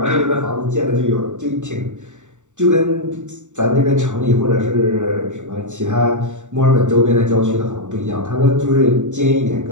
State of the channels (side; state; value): left; late; 0.85 ms